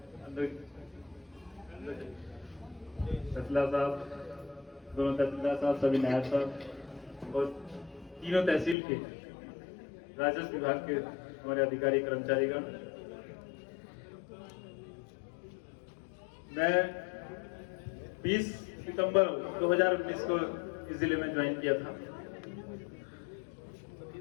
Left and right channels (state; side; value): drops out; right; at 8.8 s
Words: तहसीलदार साहब, दोनों तहसीलदार साहब, सभी नायब साहब और तीनों तहसील के राजस्व विभाग के हमारे अधिकारी कर्मचारीगण। मैं 20 सितंबर 2019 को इस जिले में ज्वाइन किया था